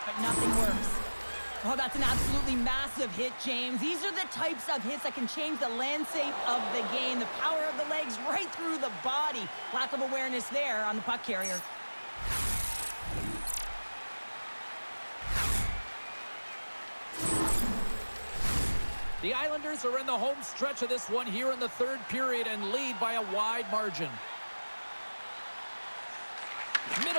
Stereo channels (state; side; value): inverted; both; correlation -1.00